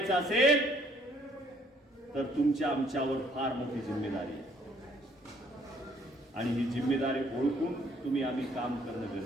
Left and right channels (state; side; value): normal; both; correlation 0.63